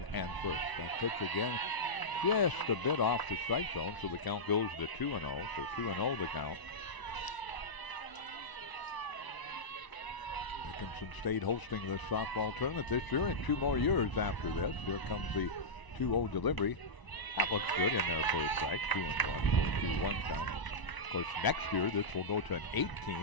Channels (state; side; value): late; right; 1.0 ms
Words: and first. That pitch again just a bit off the strike zone, so the count goes to 2-0. So 2-0 the count. Dickinson State hosting this softball tournament this year, and 2 more years after this. Here comes the 2-0 delivery. That looks good in their first strike. 2-1, so 2-1 count. Of course, next year this will go to an 8